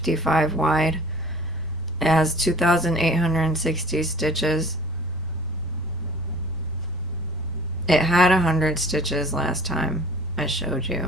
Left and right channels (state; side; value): normal; both; correlation 0.48